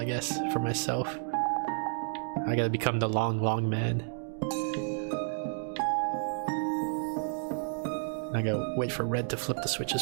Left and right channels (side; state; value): left; silent; digital silence